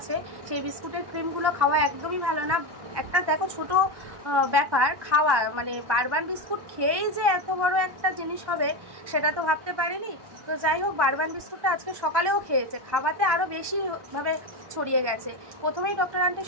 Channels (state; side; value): late; left; 1.1 ms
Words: সেই বিস্কুটের ক্রিমগুলো খাওয়া একদমই ভালো না। একটা দেখো ছোট ব্যাপার খাওয়া, মানে বারবান বিস্কুট খেয়েই যে এত বড় একটা জিনিস হবে সেটা তো ভাবতে পারিনি। তো যাই হোক, বারবান বিস্কুটটা আজকে সকালেও খেয়েছে, খাওয়াতে আরও বেশিভাবে ছড়িয়ে গেছে। প্রথমেই ডক্টর আন্টি